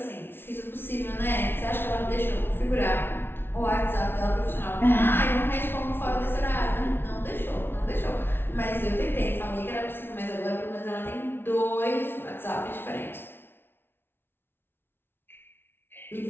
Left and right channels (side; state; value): right; late; 0.11 ms